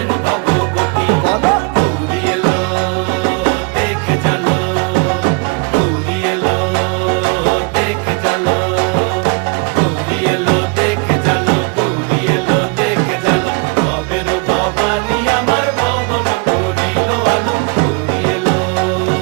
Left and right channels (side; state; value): left; quieter; 31.4 dB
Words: ভগবতী। বলো গৌরী এলো দেখে জানো, গৌরী এলো দেখে জানো, গৌরী এলো দেখে জানো, গৌরী এলো দেখে জানো। ভবের ভবানী আমার ভবন করিল আলো। গৌরী এলো